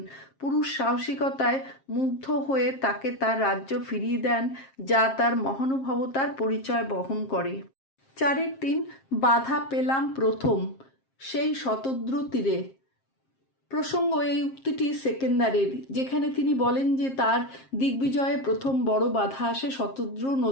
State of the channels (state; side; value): late; right; 7.5 ms